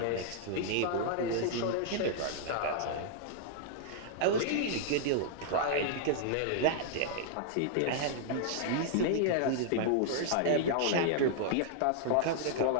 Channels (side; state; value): both; different; correlation -0.01